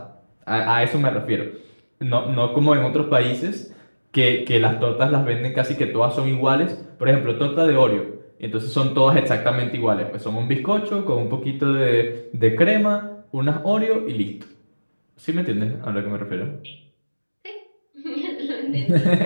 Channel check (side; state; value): both; inverted; correlation -1.00